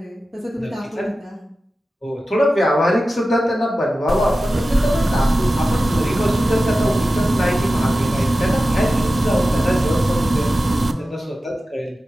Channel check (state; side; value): normal; both; correlation 0.94